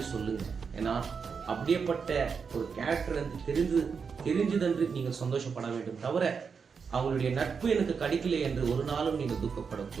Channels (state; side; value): quieter; left; 5.8 dB